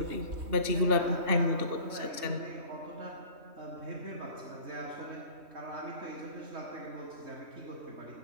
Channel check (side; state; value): left; late; 3.2 ms